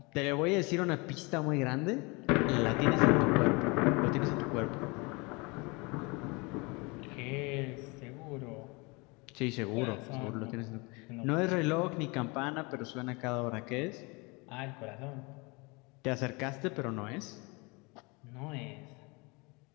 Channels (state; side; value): quieter; right; 27.6 dB